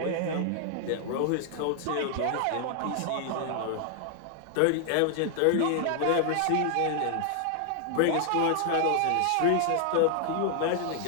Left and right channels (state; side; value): different; both; correlation 0.00